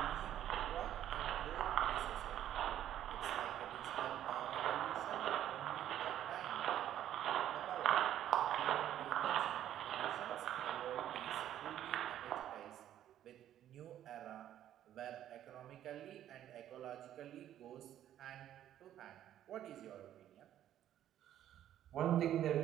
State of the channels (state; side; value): quieter; left; 11.5 dB